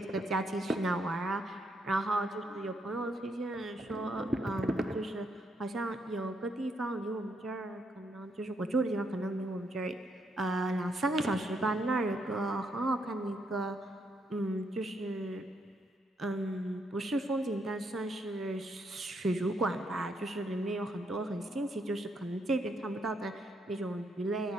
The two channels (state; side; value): normal; both; correlation 0.76